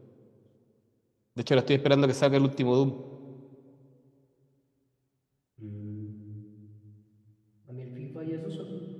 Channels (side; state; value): both; identical; correlation 1.00